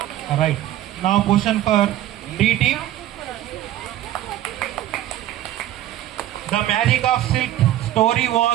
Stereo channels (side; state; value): left; quieter; 13.5 dB